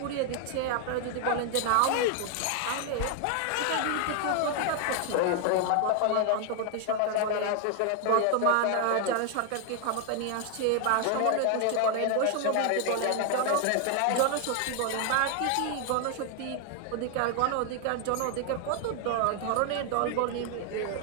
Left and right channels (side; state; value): both; different; correlation 0.00